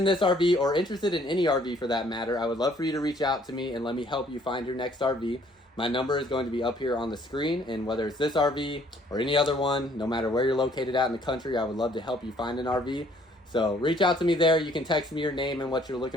this RV, or interested in any RV for that matter, I would love for you to reach out to me and let me help you find your next RV. My number is going to be up here on the screen, and whether it's this RV or any other one, no matter where you're located at in the country, I would love to help you find an RV. So reach out to me there. You can text me your name and what you're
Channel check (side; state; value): both; normal; correlation 0.61